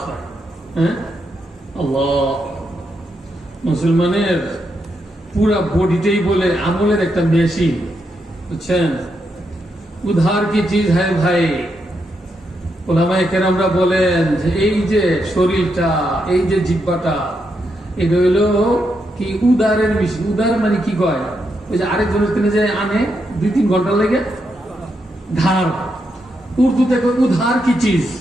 হয়। হ্যাঁ, আল্লাহ, মুসলমানের পুরা বডিটাই বলে আমলের একটা মেশিন, বুঝছেন? উধার কি চিজ হ্যায় ভাই। ওলামায়ে কেরামরা বলেন যে এই যে শরীরটা, এই যে জিহ্বাটা, এটা হইলো কি উদারের মেশিন। উদার মানে কি কয়? ওই যে আরেকজনের তিনি যে আনে 2-3 ঘন্টা লেগে, ধার। উর্দুতে কয় উধার কি চিজ,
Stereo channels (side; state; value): both; normal; correlation 0.82